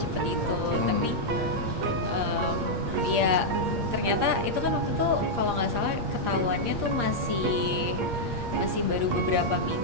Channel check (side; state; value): left; late; 8.6 ms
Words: itu. Tapi ya ternyata itu kan waktu itu kalau nggak salah ketahuannya tuh masih baru beberapa